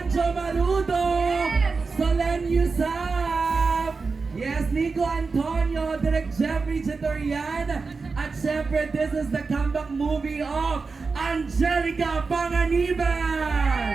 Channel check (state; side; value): quieter; left; 4.4 dB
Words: Sanjo Marudo, Solen Yusuf, yes, Nico Antonio, Direk Jeffrey Chitorian, at syempre, this is the comeback movie of Angelica Panganiban!